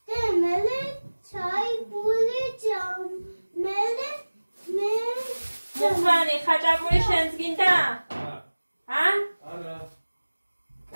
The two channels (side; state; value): both; inverted; correlation -1.00